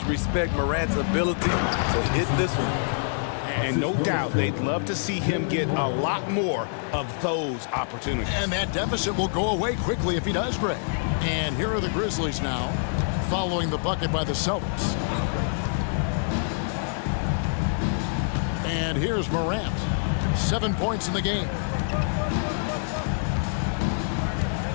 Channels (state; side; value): silent; right; digital silence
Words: respect Morant's ability to hit this one. And no doubt they'd love to see him get a lot more of those opportunities. And that deficit will go away quickly if he does, Greg. And here are the Grizzlies now, following the bucket by the Celtics. And here's Morant. 7 points in the game.